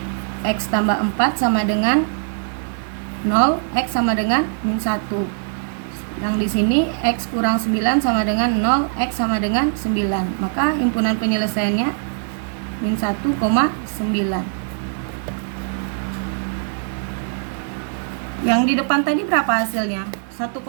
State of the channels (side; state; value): left; silent; 65 dB below the other